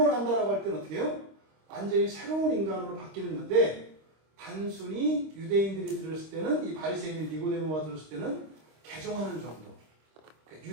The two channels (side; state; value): left; late; 26 ms